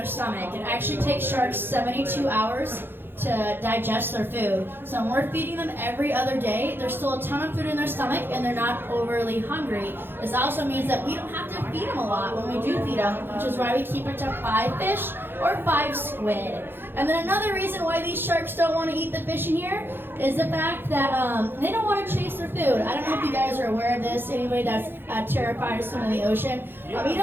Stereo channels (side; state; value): left; late; 0.10 ms